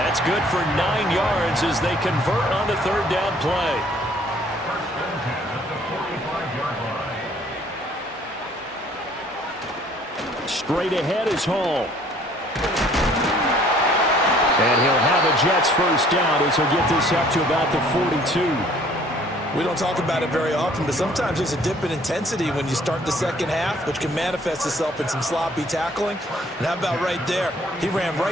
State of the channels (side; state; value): both; normal; correlation 0.58